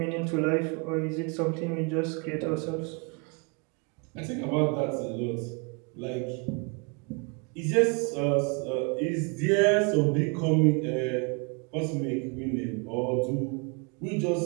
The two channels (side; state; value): left; quieter; 32.8 dB